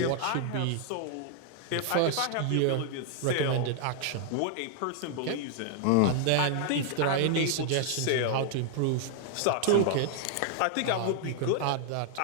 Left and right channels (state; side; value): different; both; correlation 0.00